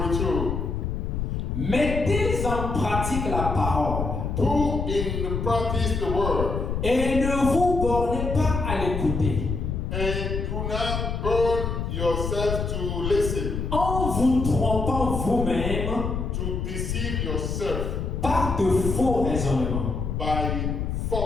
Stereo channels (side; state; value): left; noise; rumble, 2 dB below the sound